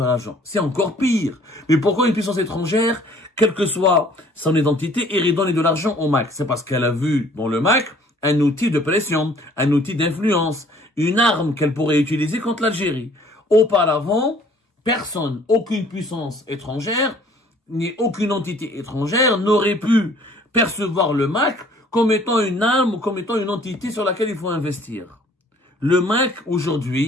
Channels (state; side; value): normal; both; correlation 0.56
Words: l'argent. C'est encore pire. Mais pourquoi une puissance étrangère, quelle que soit son identité, irait donner de l'argent au MAC? C'est parce qu'elle a vu dans le MAC un outil de pression, un outil d'influence, une arme qu'elle pourrait utiliser contre l'Algérie. Auparavant, personne, aucune puissance étrangère, ni aucune entité étrangère n'aurait pu percevoir le MAC comme étant une arme ou comme étant une entité sur laquelle il faut investir. Le MAC,